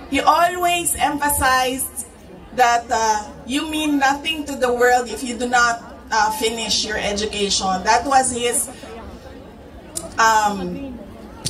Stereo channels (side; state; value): both; identical; correlation 1.00